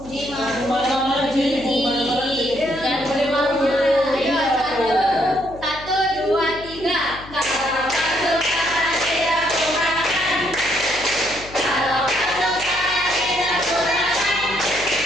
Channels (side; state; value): left; noise; hum, 17 dB below the sound